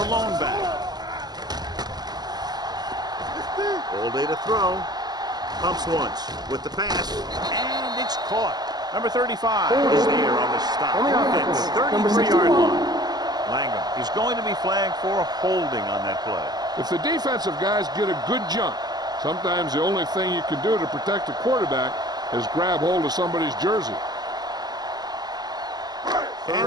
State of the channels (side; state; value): left; late; 0.20 ms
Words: lone back. All day to throw. Pumps once with the pass, and it's caught. Number 35 is there on the stop at the 33-yard line. Langham is going to be flagged for holding on that play. If the defensive guys get a good jump, sometimes the only thing you can do to protect the quarterback is grab hold of somebody's jersey.